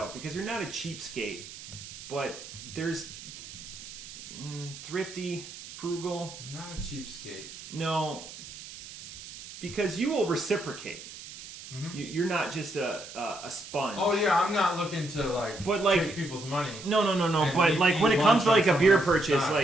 because you're not a cheapskate, but there's thrifty. Frugal. I'm not a cheapskate. No, because you will reciprocate. Mm-hmm. You're not just a sponge. Oh yeah, I'm not looking to take people's money. No. But like when it comes to like a beer purchase,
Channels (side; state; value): right; noise; hiss, 14 dB below the sound